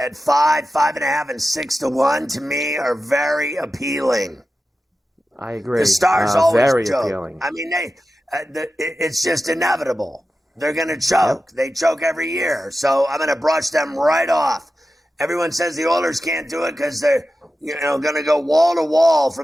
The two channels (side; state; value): both; normal; correlation 0.92